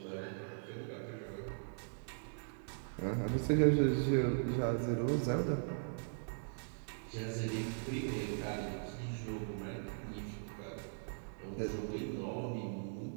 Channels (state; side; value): silent; left; digital silence